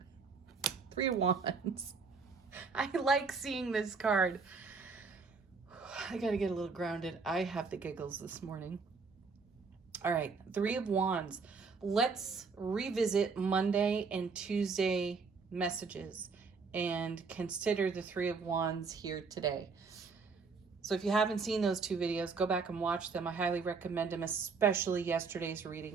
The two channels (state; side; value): quieter; left; 4.8 dB